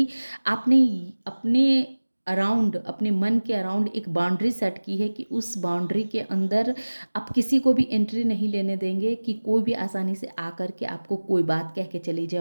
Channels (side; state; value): both; inverted; correlation -1.00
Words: आपने अपने अराउंड, अपने मन के अराउंड एक बाउंड्री सेट की है कि उस बाउंड्री के अंदर आप किसी को भी एंट्री नहीं लेने देंगे, कि कोई भी आसानी से आकर के आपको कोई बात कह के चली जाए